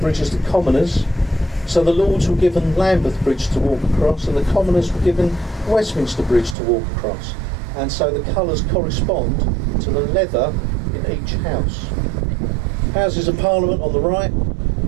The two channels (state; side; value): drops out; left; at 6.6 s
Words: as the Commoners. So the Lords were given Lambeth Bridge to walk across, and the Commoners were given Westminster Bridge to walk across. And so the colours correspond to the leather in each house. Houses of Parliament on the right,